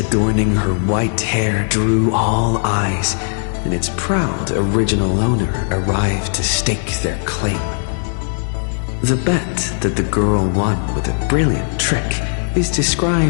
her white hair drew all eyes, and its proud original owner arrived to stake their claim. The bet that the girl won with a brilliant trick is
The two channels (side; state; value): right; silent; digital silence